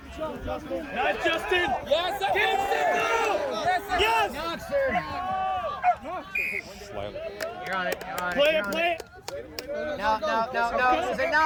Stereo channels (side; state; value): both; identical; correlation 1.00